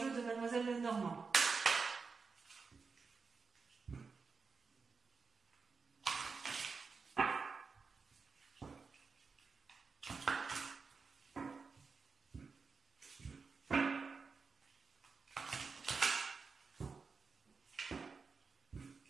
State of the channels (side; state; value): left; quieter; 4.9 dB